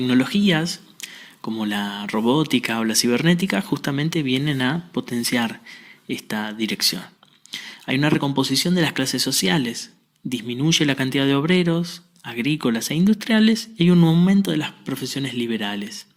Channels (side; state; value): both; identical; correlation 1.00